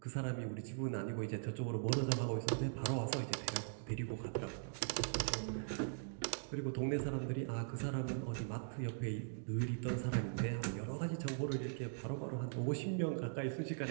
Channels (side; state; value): left; silent; digital silence